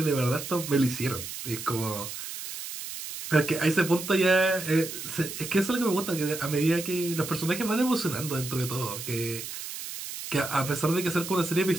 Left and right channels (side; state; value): right; noise; hiss, 8 dB below the sound